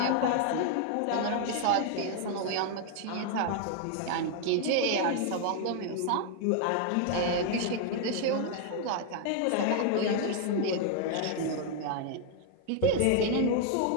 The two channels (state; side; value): different; both; correlation 0.00